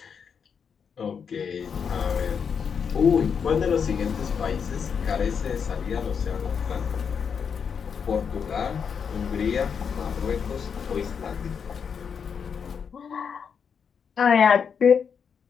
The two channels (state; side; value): quieter; right; 6.7 dB